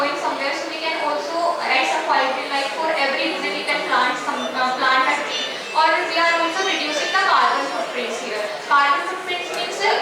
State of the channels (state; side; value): identical; both; correlation 1.00